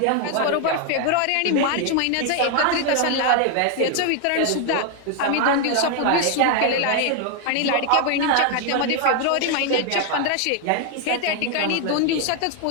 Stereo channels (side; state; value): both; different; correlation 0.00